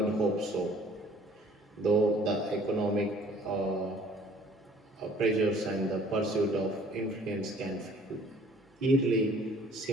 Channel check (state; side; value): normal; both; correlation 0.54